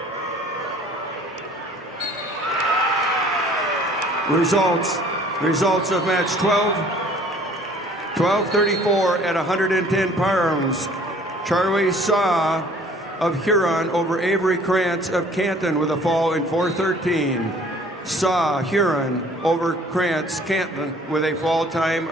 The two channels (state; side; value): normal; both; correlation 0.53